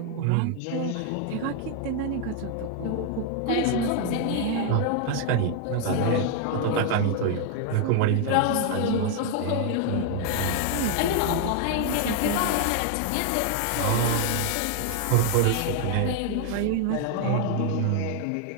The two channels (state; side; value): different; both; correlation 0.00